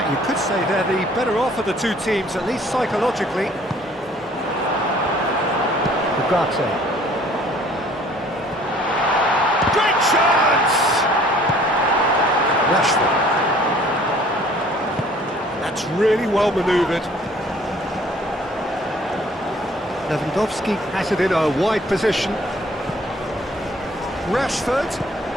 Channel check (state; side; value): normal; both; correlation 0.55